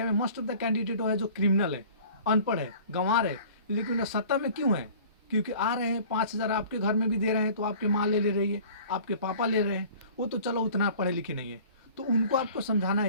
में मोस्ट ऑफ द कैंडिडेट है जो क्रिमिनल है, अनपढ़ है, गंवार है। लेकिन सत्ता में क्यों है? क्योंकि आ रहे हैं 5,000 आपके घर में भी दे रहे हैं, तो आपके माँ ले रही है, आपके पापा ले रहे हैं, वो तो चलो उतना पढ़े लिखे नहीं है। तो उनको आपको समझाना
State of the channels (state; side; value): inverted; both; correlation -0.47